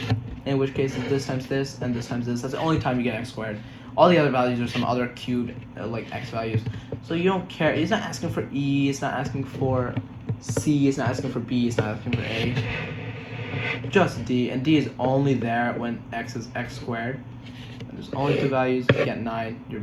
in which case it's this times this and this times this. That's the only time you get x squared. All the other values are some other cubed, like x values. So you don't care. It's not asking for E, it's not asking for C, it's not asking for B, it's not asking for A. Just D, and D is only there when x is x squared. And there's only 2 values, you get 9, your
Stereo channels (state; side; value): identical; both; correlation 1.00